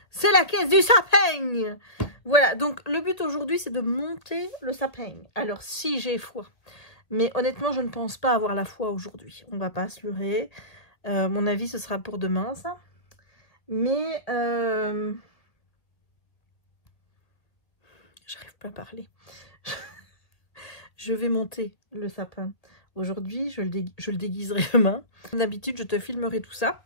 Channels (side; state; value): right; late; 1.8 ms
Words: C'est la caisse du sapin. Voilà, donc le but aujourd'hui, c'est de monter le sapin. Alors, si j'ai foi. Mais honnêtement, je ne pense pas avoir la foi aujourd'hui. On va pas se leurrer. Mon avis, ce sera pour demain, ça. Mais... J'arrive pas à parler. Je vais monter le sapin. Aujourd'hui, je le déguiserai demain. Comme d'habitude, je te filmerai tout ça.